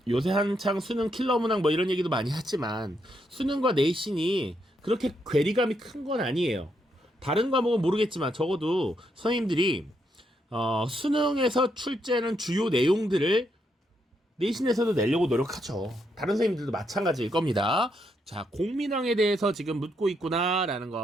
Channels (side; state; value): both; normal; correlation 0.78